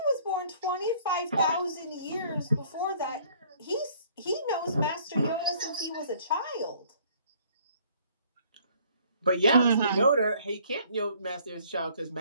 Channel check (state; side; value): inverted; both; correlation -0.59